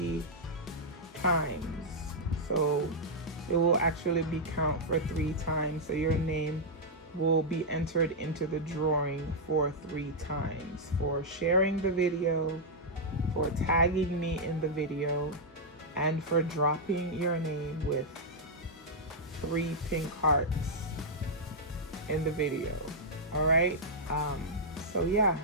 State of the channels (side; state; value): both; normal; correlation -0.06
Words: times. So it will actually be count for 3 times, so your name will be entered into the drawing for 3 times for sharing the video, for tagging me in the video, and for dropping your name with 3 pink hearts in the video. All right, so yeah,